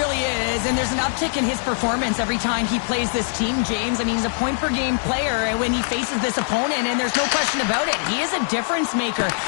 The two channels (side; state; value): right; silent; 63 dB below the other